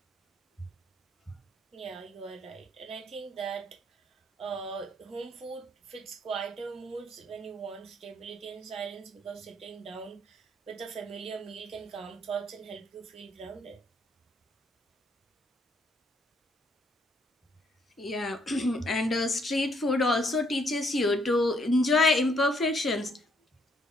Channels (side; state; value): both; normal; correlation 0.69